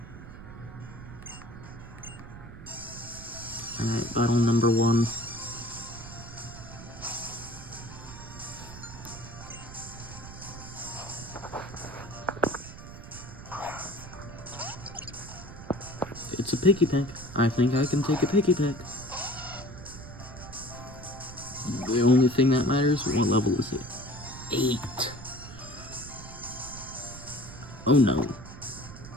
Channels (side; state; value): right; noise; rumble, 14 dB below the sound